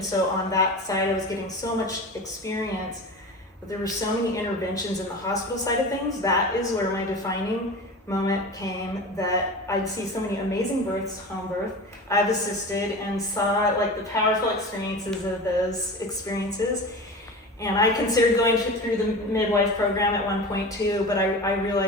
so on that side I was getting so much experience, but there were so many interventions in the hospital side of things. That is where my defining moment came, that I'd see so many amazing births, home birth, I've assisted and saw like the powerful experiences of those experiences. And I considered going through the midwife program at one point too, but I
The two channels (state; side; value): normal; both; correlation 0.31